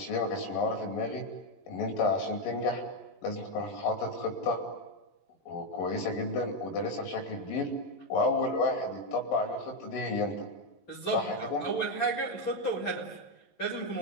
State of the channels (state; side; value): late; right; 11 ms